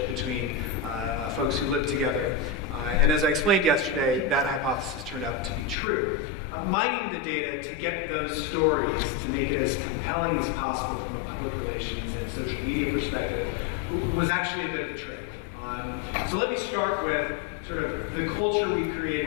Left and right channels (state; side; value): drops out; right; at 5.8 s